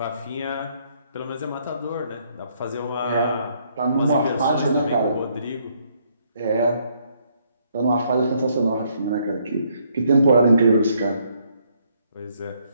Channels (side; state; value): both; inverted; correlation -0.70